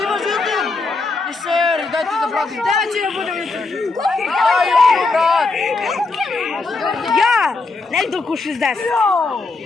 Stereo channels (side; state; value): right; quieter; 3.7 dB